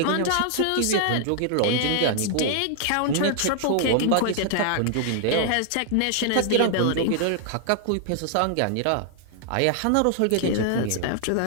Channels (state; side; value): different; both; correlation 0.00